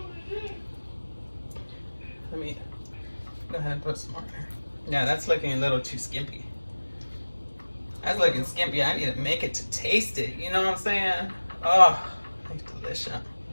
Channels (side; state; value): both; inverted; correlation -1.00